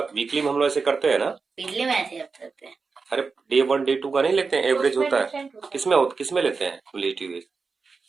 वीकली में हम लोग ऐसे करते हैं ना, वीकली में ऐसे करते हैं। अरे डे 1 डे 2 का नहीं लेते हैं, एवरेज होता है। किसमें लेते हैं क्युमुलेटिव?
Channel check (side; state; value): left; quieter; 4.6 dB